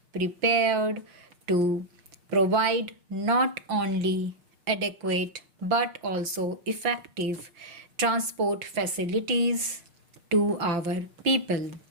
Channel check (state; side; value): late; left; 6.6 ms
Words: prepared to provide not only adequate but also effective transport facilities to our people.